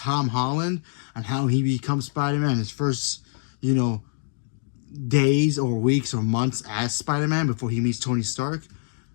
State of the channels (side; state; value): right; silent; digital silence